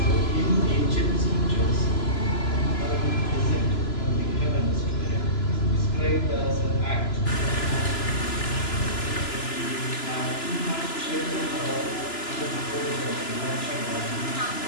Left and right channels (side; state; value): right; late; 3.0 ms